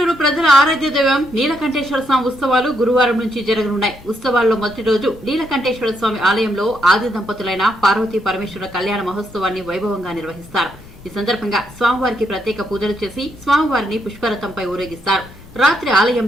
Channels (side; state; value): left; noise; rumble, 24 dB below the sound